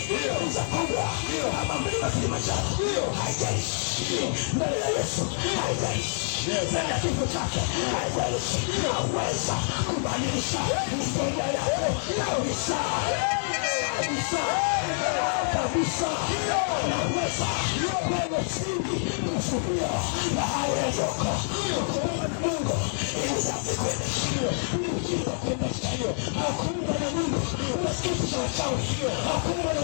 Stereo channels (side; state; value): right; silent; digital silence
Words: kubwa kama mlima Kilimanjaro, haijalishi mbele ya Yesu, haijalishi mbele ya kifo chake, haijalishi, aweza kubadilisha historia yako kabisa. Kabisa, kabisa, naweza kwenye chini kusudia na hayo yaliyoko kuomba na Mungu ili wake kuendesha ujinga kuendesha hakuunga na Mungu unasikitisha wachawi, hakuunga na